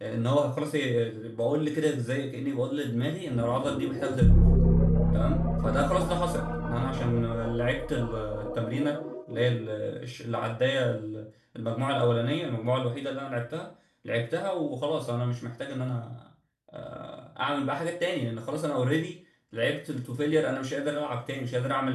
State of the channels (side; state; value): both; identical; correlation 1.00